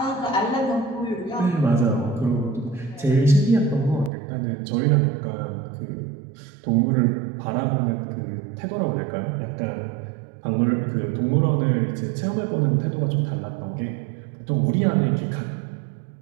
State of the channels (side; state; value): left; drops out; at 4.1 s